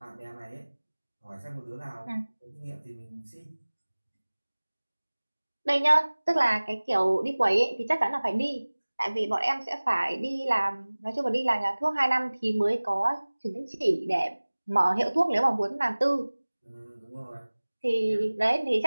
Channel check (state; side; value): inverted; both; correlation -1.00